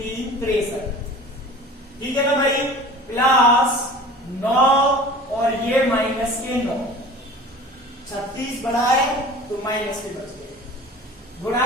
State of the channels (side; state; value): both; normal; correlation 0.41